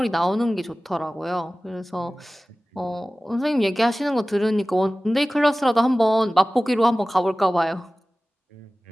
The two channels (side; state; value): both; normal; correlation 0.97